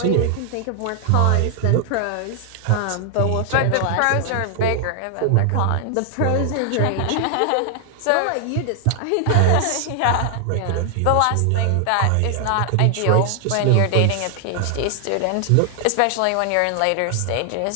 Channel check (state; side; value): different; both; correlation 0.00